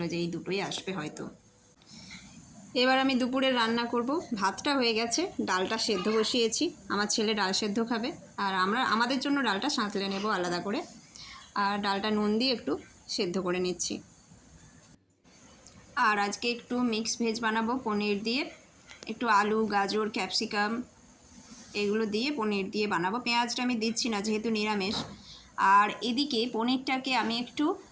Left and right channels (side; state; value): both; identical; correlation 1.00